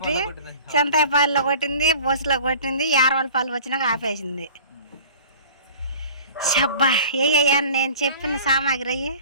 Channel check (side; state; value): both; inverted; correlation -0.45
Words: చింతాయిపాల్లో కొట్టింది, బస్సులో కొట్టింది, యారవలపాలు వచ్చినాక ఆపేసింది. షబ్బా ఏ నేను చెప్పిన సామాగ్రి అయ్యి